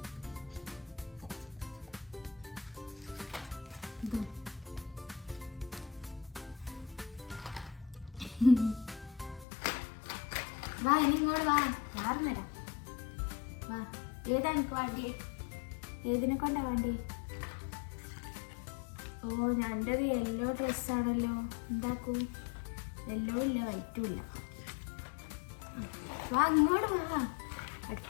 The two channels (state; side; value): drops out; right; at 9.5 s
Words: വാ, ഇനി ഇങ്ങോട്ട് വാ. മാറുന്നേരാ. വാ, ഏതാ എനിക്ക് വേണ്ടി? ഏതിനെ കൊണ്ടാ വേണ്ടി? ഓ, ഞൻ്റെത് യെല്ലോ ഡ്രസ്സാണല്ലോ. എന്താക്കൂ? യെല്ലോ ഇല്ല, വൈറ്റും ഇല്ല. വാ, ഇങ്ങോട്ട് വാ.